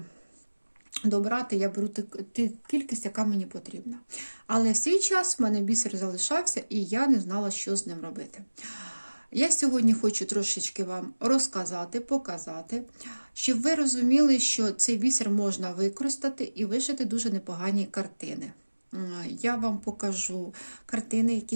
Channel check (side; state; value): both; inverted; correlation -1.00